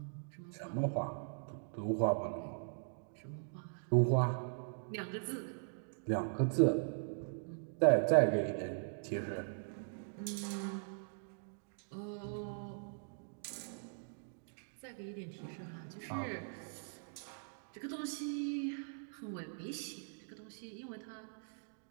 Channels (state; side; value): silent; left; digital silence